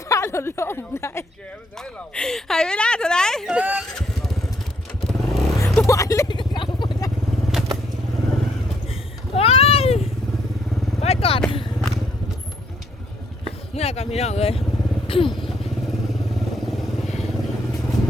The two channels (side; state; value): both; normal; correlation 0.70